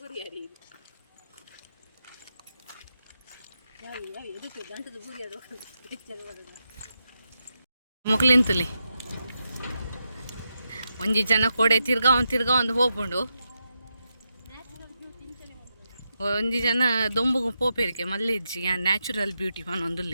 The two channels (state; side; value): inverted; both; correlation -0.86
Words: ಮುಕ್ಲಿಂತಲಿ ಒಂಜಿ ಜನ ಕೋಡೆ ತಿರ್ಗಾ ಒಂದು ಹೋಗ್ಕೊಂಡು ಒಂಜಿ ಜನ ದೊಂಬುಗು ಪೋಪೆರ್ಕೆ ಮಲ್ಲಿಜ್ಜಿ ನ್ಯಾಚುರಲ್ ಬ್ಯೂಟಿ